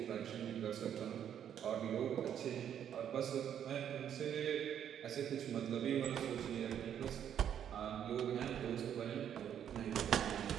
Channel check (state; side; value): quieter; left; 9.4 dB